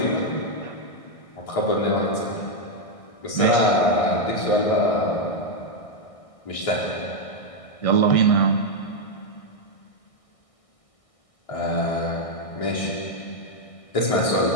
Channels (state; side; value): late; right; 1.6 ms